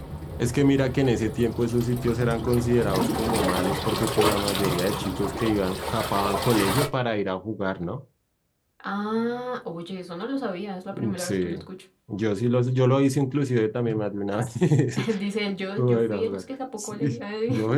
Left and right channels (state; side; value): identical; both; correlation 1.00